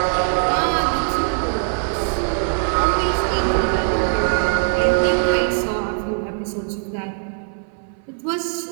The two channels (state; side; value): silent; left; 65 dB below the other